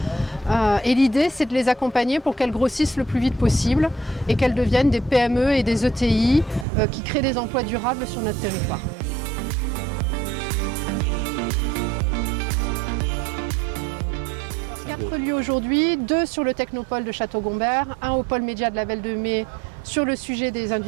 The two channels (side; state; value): left; drops out; at 6.7 s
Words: Et l'idée, c'est de les accompagner pour qu'elles grossissent le plus vite possible et qu'elles deviennent des PME et des ETI qui créent des emplois durables sur notre territoire. Quatre lieux aujourd'hui, 2 sur le Technopole de Château-Gombert, un au pôle média de la Belle de Mai sur le sujet des